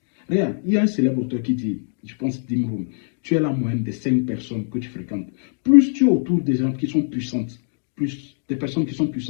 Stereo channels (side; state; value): right; silent; digital silence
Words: Regarde, il y a un célèbre auteur qui dit, je pense Dimroum, tu es la moyenne des 5 personnes que tu fréquentes. Plus tu es autour des gens qui sont puissantes, plus des personnes qui sont